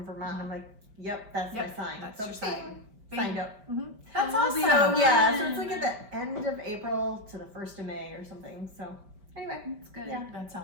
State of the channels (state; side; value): late; left; 5.1 ms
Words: Vermont. I'm like, yep, that's my sign. That's so your sign. Signed up. That's awesome. So yeah, so it's like at the end of April to the 1st of May or something. So anyway, It's good. Yeah. That